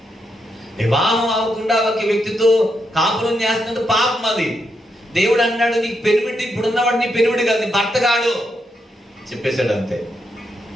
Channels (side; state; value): both; normal; correlation 0.81